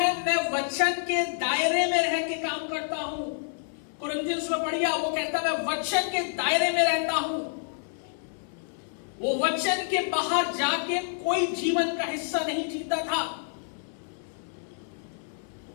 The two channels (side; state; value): right; silent; 59 dB below the other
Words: मैं वचन के दायरे में रह के काम करता हूं। कुरिन्थियंस में पढ़िए, वो कहता है मैं वचन के दायरे में रहता हूं। वो वचन के बाहर जाके कोई जीवन का हिस्सा नहीं जीता था।